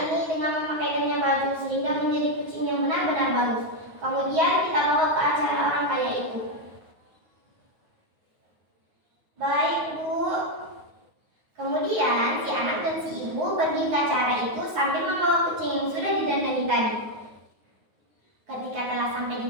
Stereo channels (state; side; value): late; left; 9.4 ms